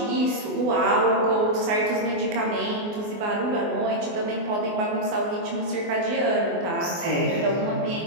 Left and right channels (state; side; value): late; left; 24 ms